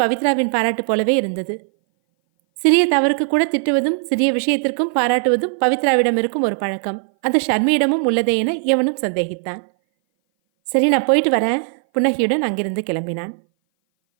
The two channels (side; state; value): left; silent; 59 dB below the other